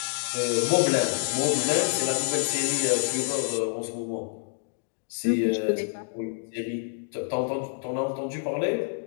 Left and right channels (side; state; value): right; silent; digital silence